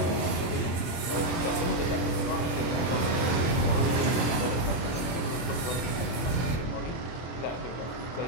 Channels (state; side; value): late; right; 24 ms